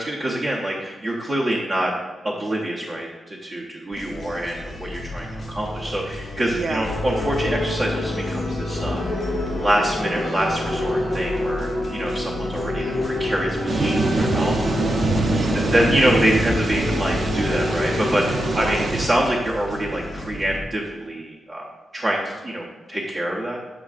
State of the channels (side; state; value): both; normal; correlation 0.88